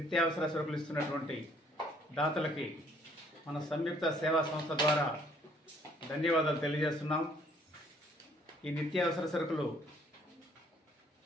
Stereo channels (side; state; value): both; normal; correlation 0.63